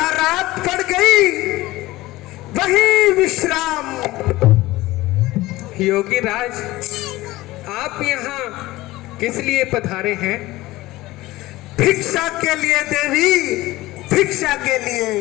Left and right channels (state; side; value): quieter; right; 18.3 dB